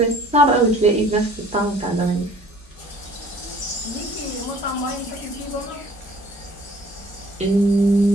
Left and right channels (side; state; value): both; normal; correlation 0.53